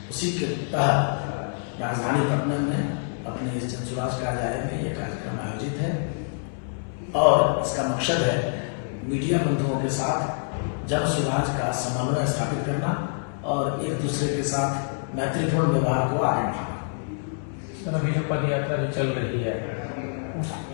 उसी के तहत राजधानी पटना में अपने इस जनसुराज कार्यालय में यह कार्यक्रम आयोजित है और इसका मकसद है मीडिया बंधुओं के साथ जनसुराज का समन्वय स्थापित करना और एक दूसरे के साथ मैत्रीपूर्ण व्यवहार को आगे बढ़ाना। सर, अभी जो पद यात्रा जो चल रही है उस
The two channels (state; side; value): silent; right; digital silence